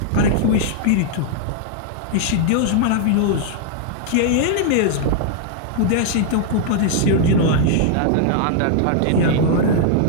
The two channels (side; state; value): both; different; correlation -0.01